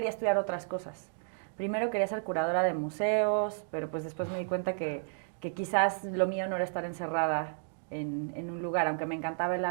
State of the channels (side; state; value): left; silent; digital silence